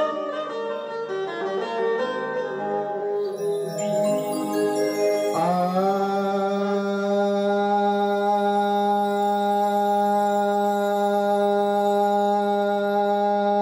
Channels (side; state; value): both; identical; correlation 1.00